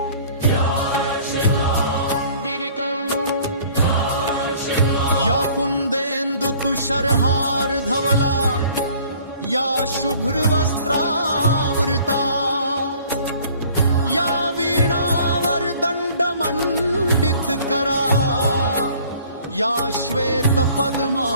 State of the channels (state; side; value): inverted; both; correlation -0.54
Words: या कुंदेन्दु तुषारहार धवला, या शुभ्र वस्त्रावृता, या वीणावर दंड मंडित करा, या श्वेत